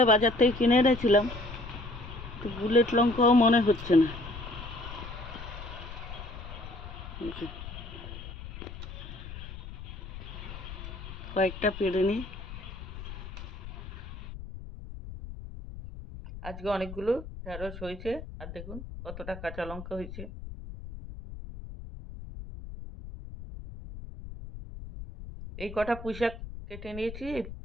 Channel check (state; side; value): noise; left; rumble, 11 dB below the sound